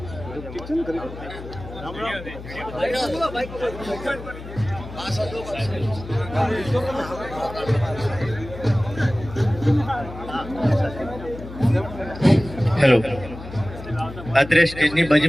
હેલો, અત્યારે સ્ટેજની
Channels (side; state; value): left; noise; hum, 12 dB below the sound